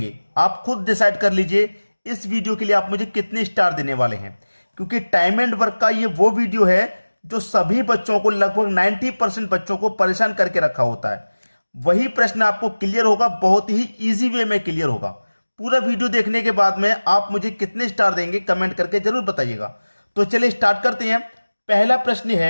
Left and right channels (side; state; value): both; inverted; correlation -1.00